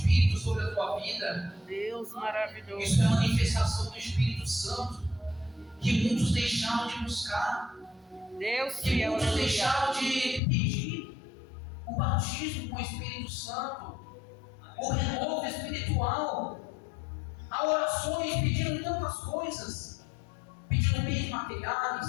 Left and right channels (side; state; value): right; drops out; at 10.4 s